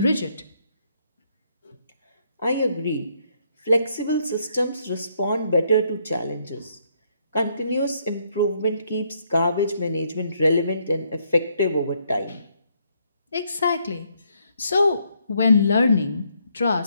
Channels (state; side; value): inverted; both; correlation -0.72